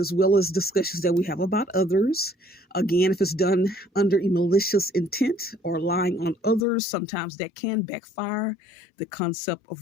well as discussions that we have about others. Again, if it's done under a malicious intent or lying on others, sometimes that can backfire. The concept of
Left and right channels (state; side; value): drops out; right; at 6.7 s